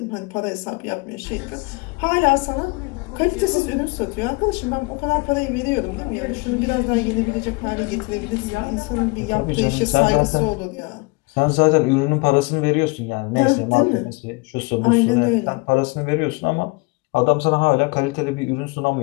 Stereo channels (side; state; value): right; quieter; 27.4 dB